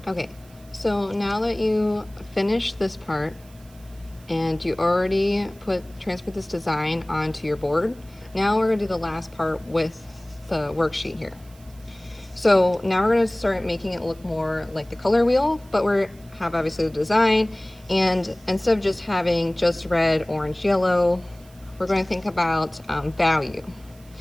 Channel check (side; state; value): right; noise; hiss, 27 dB below the sound